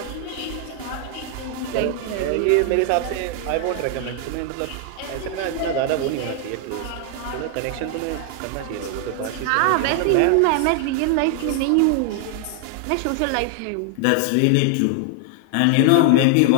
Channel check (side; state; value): both; different; correlation 0.00